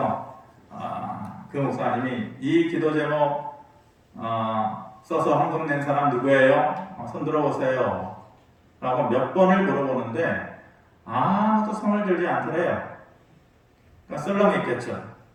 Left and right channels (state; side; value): identical; both; correlation 1.00